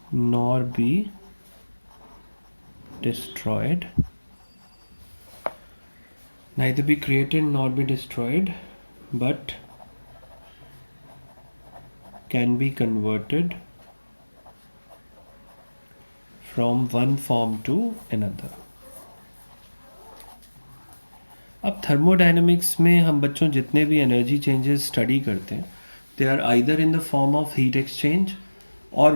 nor be destroyed, neither be created nor be destroyed, but can be converted from one form to another. अब थर्मोडायनेमिक्स में हम बच्चों जितने भी एनर्जी चेंजेस स्टडी करते हैं, they are either in the form of heat exchange और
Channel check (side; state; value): both; inverted; correlation -1.00